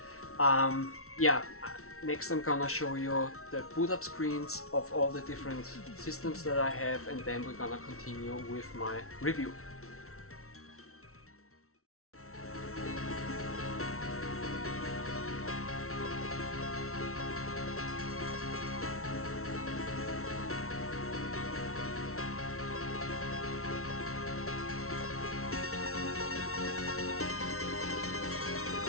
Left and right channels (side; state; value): right; late; 0.63 ms